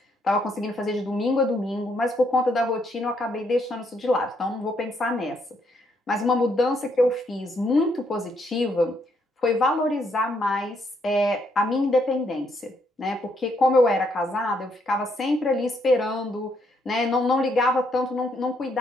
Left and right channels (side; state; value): both; normal; correlation 0.73